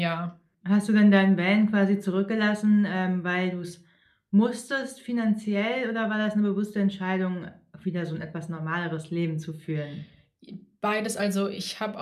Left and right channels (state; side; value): identical; both; correlation 1.00